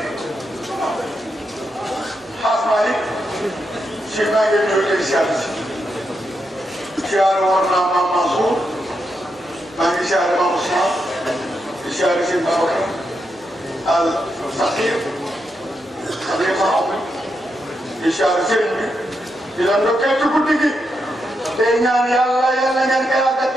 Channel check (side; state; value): both; normal; correlation 0.83